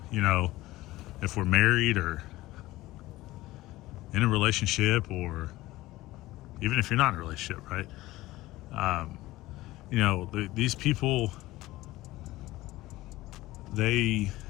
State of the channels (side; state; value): right; quieter; 17.8 dB